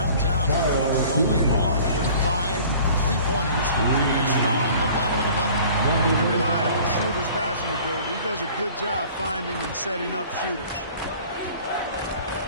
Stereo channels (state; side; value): inverted; both; correlation -0.48